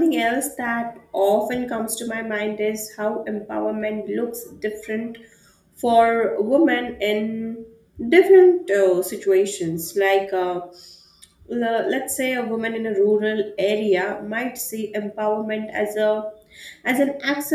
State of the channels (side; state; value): both; identical; correlation 1.00